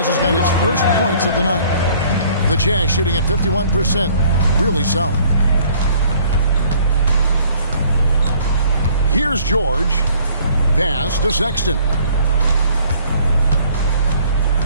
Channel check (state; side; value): inverted; both; correlation -0.57